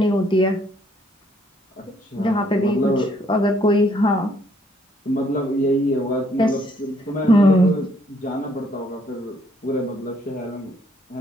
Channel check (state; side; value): normal; both; correlation 0.68